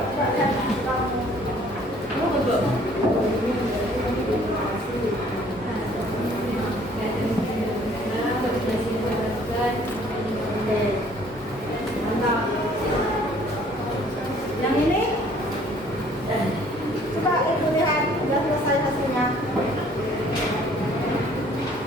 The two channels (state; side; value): normal; both; correlation 0.57